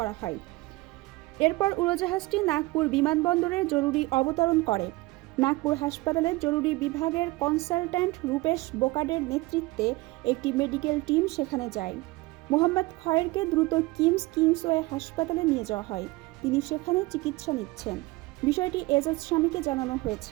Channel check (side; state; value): left; quieter; 21.3 dB